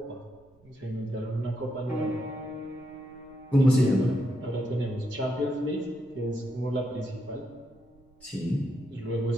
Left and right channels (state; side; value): noise; right; rumble, 29 dB below the sound